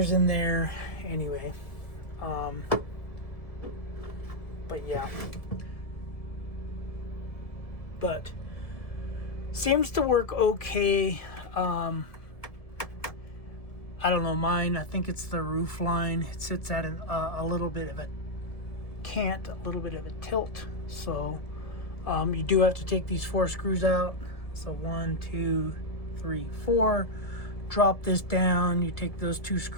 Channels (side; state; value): right; late; 1.7 ms